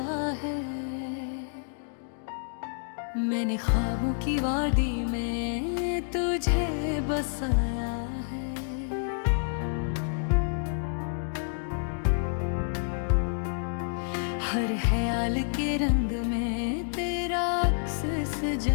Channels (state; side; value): silent; right; digital silence